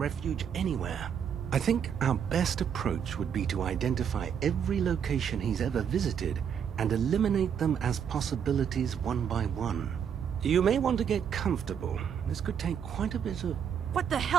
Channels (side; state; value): left; quieter; 7.9 dB